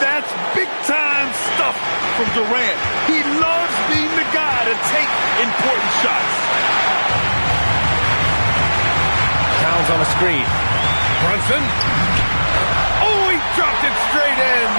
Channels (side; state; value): both; inverted; correlation -1.00